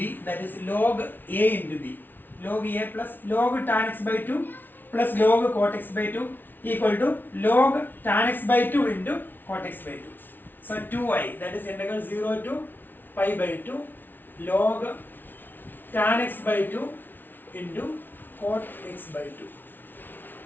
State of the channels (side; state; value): right; late; 0.092 ms